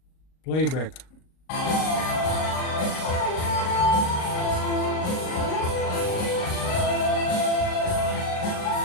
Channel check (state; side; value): late; right; 38 ms